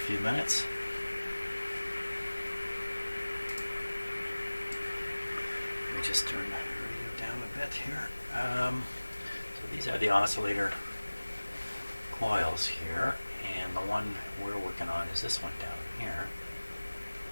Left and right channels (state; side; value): inverted; both; correlation -1.00